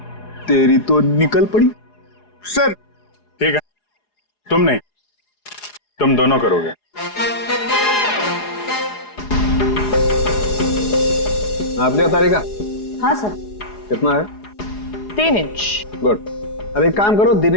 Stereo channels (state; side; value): late; right; 4.8 ms